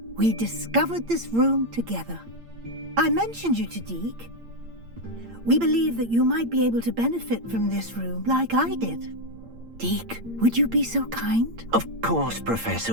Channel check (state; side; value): late; left; 8.7 ms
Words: We discovered this room together. I mentioned you to Deke. We believe that you might be able to benefit from this room like I did. Deke, would you be so kind? Of course, Professor